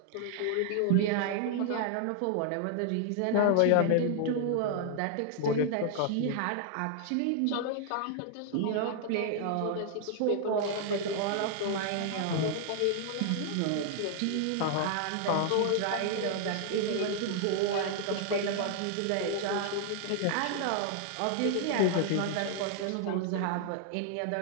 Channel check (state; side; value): different; both; correlation 0.00